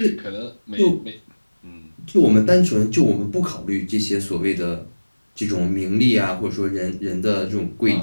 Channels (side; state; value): both; inverted; correlation -1.00